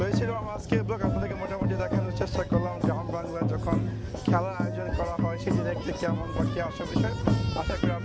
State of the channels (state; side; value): identical; both; correlation 1.00